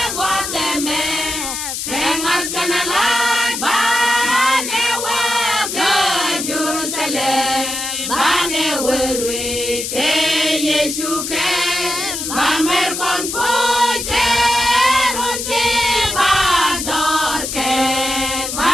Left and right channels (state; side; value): noise; left; hiss, 4 dB below the sound